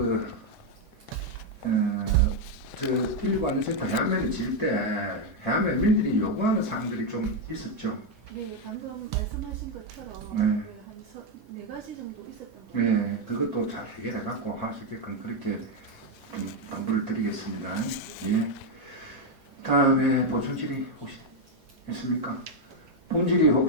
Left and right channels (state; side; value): normal; both; correlation 0.03